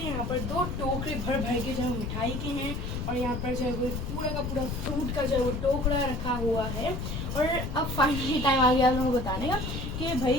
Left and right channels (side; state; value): left; noise; rumble, 4 dB below the sound